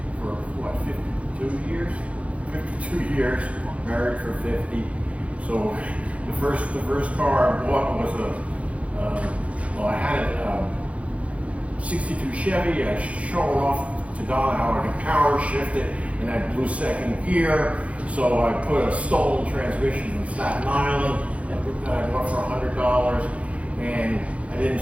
for what, 52 years? 52 years, married for 50. So the first car I bought was well, I had a 62 Chevy. I showed off to Don how I could power shift it, and I blew second gear. So I put a stolen transmission from Staten Island that I bought for $100, and I didn't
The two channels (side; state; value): left; late; 0.064 ms